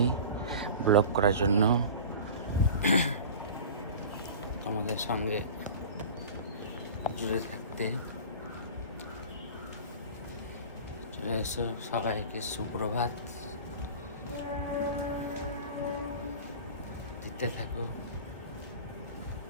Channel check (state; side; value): inverted; both; correlation -0.36